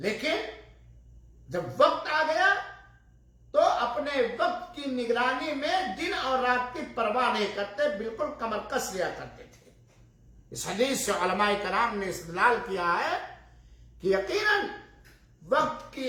جب وقت آ گیا تو اپنے وقت کی نگرانی میں دن اور رات کی پرواہ نہیں کرتے، بالکل کمر کس لیا کرتے تھے۔ اس حدیث سے علماء کرام نے استدلال کیا ہے کہ یقیناً وقت کی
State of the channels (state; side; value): identical; both; correlation 1.00